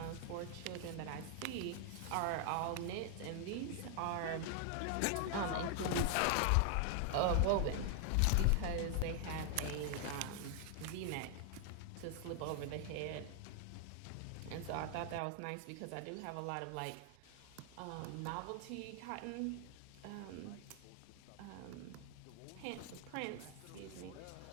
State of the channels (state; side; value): different; both; correlation 0.00